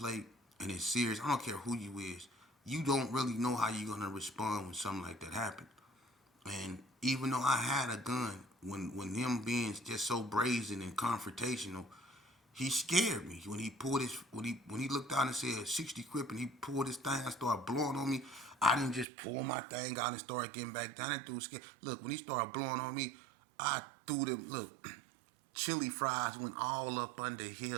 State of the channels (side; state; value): left; drops out; at 19.1 s